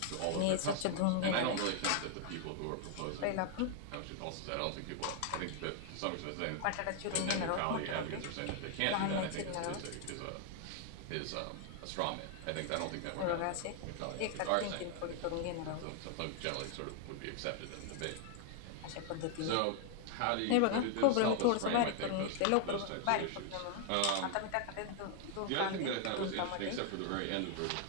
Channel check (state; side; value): different; both; correlation 0.00